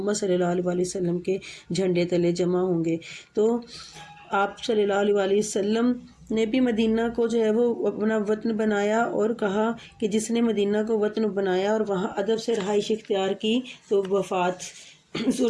صلی اللہ علیہ وآلہ وسلم کے جھنڈے تلے جمع ہوں گے۔ تو آپ صلی اللہ علیہ وآلہ وسلم نے بھی مدینہ کو جو ہے وہ اپنا وطن بنایا، اور کہا کہ جس نے مدینہ کو وطن بنایا اور وہاں ادب سے رہائش اختیار کی تو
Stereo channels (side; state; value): both; identical; correlation 1.00